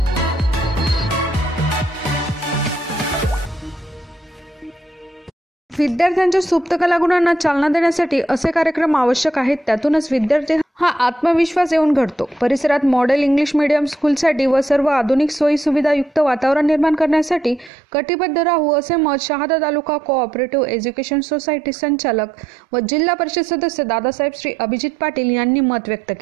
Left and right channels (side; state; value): left; drops out; at 17.7 s